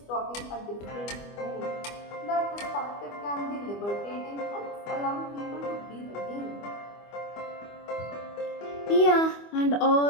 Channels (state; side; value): late; right; 25 ms